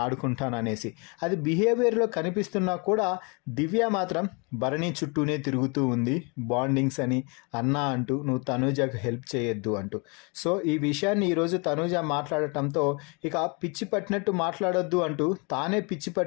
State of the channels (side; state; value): right; quieter; 31.7 dB